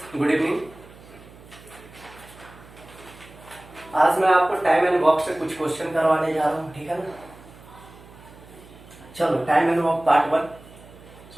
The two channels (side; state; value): right; noise; hum, 21 dB below the sound